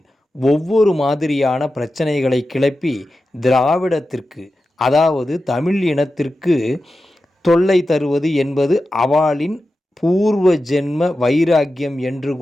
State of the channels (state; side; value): normal; both; correlation 0.92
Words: ஒவ்வொரு மாதிரியான பிரச்சனைகளை கிளப்பி திராவிடத்திற்கு, அதாவது தமிழ் இனத்திற்கு தொல்லை தருவது என்பது அவளின் பூர்வ ஜென்ம வைராக்கியம் என்று